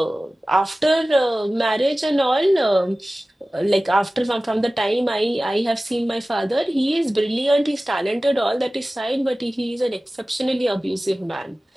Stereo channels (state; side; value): normal; both; correlation 0.97